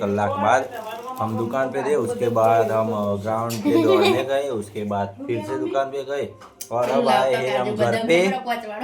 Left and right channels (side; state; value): both; identical; correlation 1.00